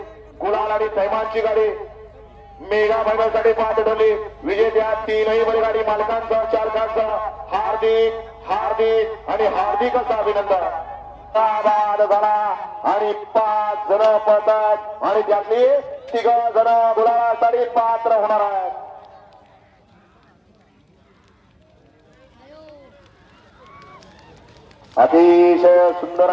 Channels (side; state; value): both; identical; correlation 1.00